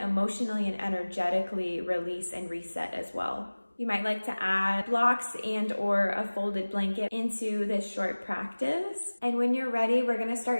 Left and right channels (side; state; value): both; inverted; correlation -1.00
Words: and energetically release and reset as well. You might like to add blocks and or a folded blanket into this short practice. And when you're ready, we're gonna